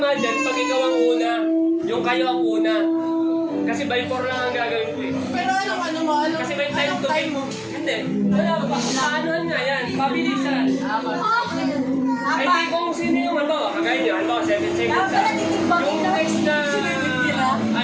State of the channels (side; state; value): both; identical; correlation 1.00